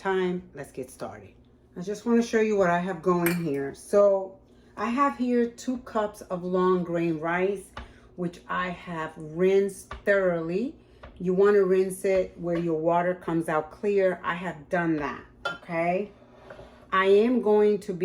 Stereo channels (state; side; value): identical; both; correlation 1.00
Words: Let's get started. I just want to show you what I have going here. So I have here 2 cups of long grain rice, which I have rinsed thoroughly. You want to rinse it where your water comes out clear. I have done that, okay? I am going to